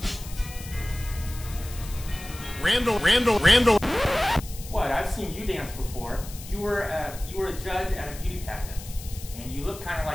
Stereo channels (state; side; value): noise; left; hiss, 15 dB below the sound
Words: Randall. Randall. Randall. What? I've seen you dance before. You were a judge at a beauty pageant, and you look kind of